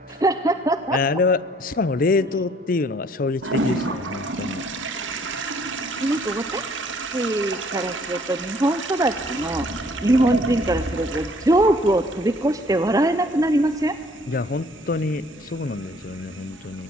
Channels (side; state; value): both; normal; correlation 0.59